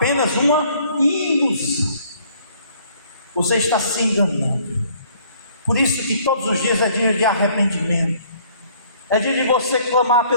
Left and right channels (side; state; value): both; inverted; correlation -0.60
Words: uma ilusão. Você está se enganando. Por isso que todos os dias é dia de arrependimento, é dia de você clamar